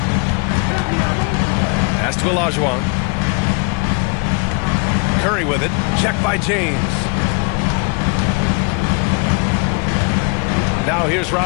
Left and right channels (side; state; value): right; quieter; 32.8 dB